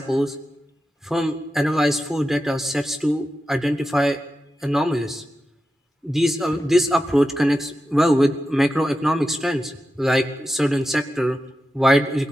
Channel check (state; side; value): normal; both; correlation 0.90